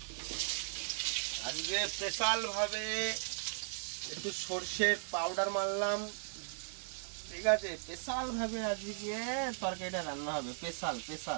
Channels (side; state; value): left; silent; digital silence